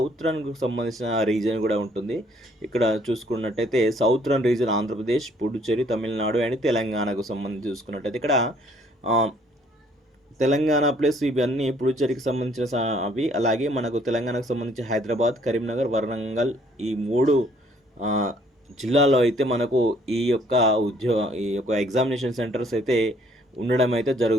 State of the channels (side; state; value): both; normal; correlation 0.62